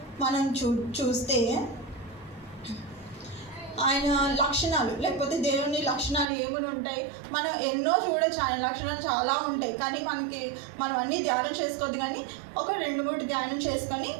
మనం చూస్తే ఆయన లక్షణాలు లేకపోతే దేవుని లక్షణాలు ఏముని ఉంటాయి, మనం ఎన్నో చూడొచ్చు. ఆయన లక్షణాలు చాలా ఉంటాయి, కానీ మనం అన్నీ ధ్యానం చేసుకోవద్దు. కానీ ఒక 2-3 ధ్యానం చేసుకొని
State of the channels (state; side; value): drops out; left; at 6.2 s